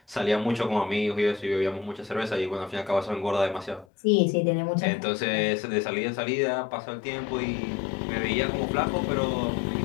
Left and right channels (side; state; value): right; drops out; at 3.9 s